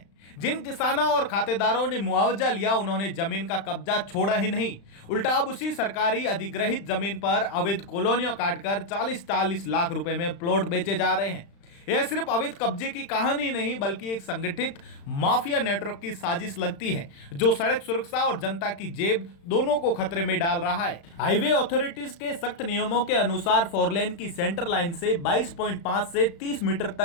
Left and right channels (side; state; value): right; late; 35 ms